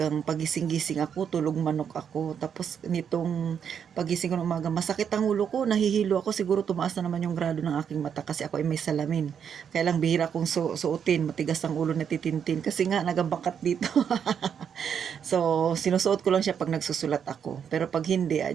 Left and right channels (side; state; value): left; quieter; 7.8 dB